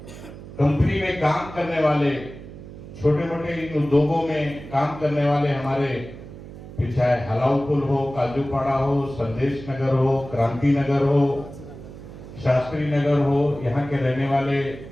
कंपनी में काम करने वाले, छोटे मोटे इन उद्योगों में काम करने वाले हमारे, चाहे हलाउपुल हो, काजूपाड़ा हो, संदेश नगर हो, क्रांति नगर हो, शास्त्री नगर हो, यहाँ के रहने वाले,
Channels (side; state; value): right; noise; hum, 14 dB below the sound